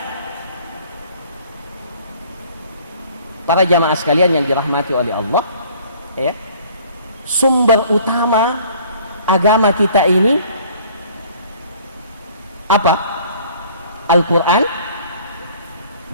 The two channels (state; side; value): inverted; both; correlation -0.54